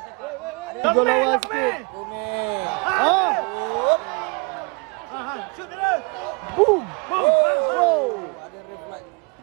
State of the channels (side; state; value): left; quieter; 31.7 dB